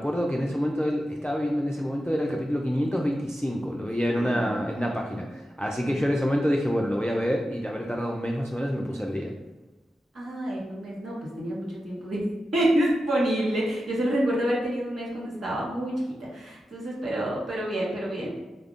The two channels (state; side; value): normal; both; correlation 0.91